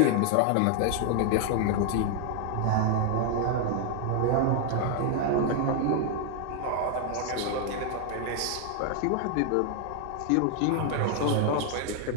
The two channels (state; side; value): different; both; correlation 0.00